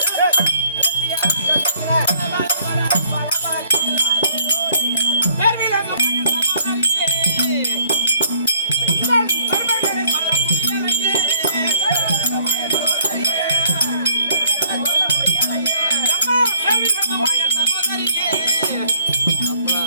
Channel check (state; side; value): inverted; both; correlation -0.62